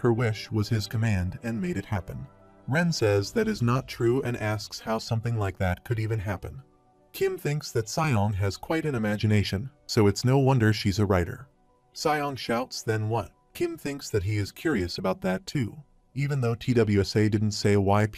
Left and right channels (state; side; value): identical; both; correlation 1.00